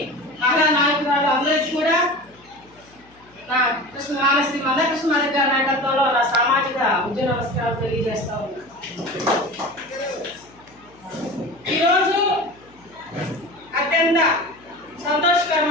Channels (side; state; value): left; noise; hum, 28 dB below the sound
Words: మహిళా నాయకురాలు అందరికీ కూడా నా శ్రీ మందకృష్ణమాదిగ గారి నాయకత్వంలో నా సామాజిక ఉద్యోగ నమస్కారాలు తెలియజేస్తా ఉన్నా. ఈరోజు అత్యంత